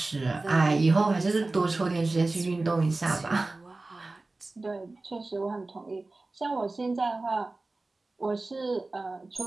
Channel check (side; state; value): left; quieter; 3.2 dB